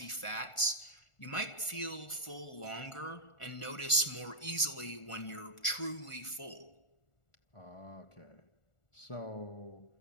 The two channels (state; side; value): late; right; 1.4 ms